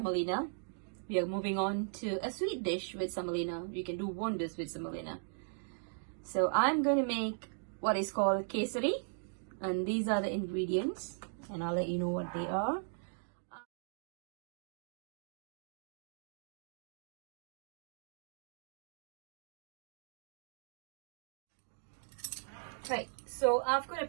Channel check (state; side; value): silent; left; digital silence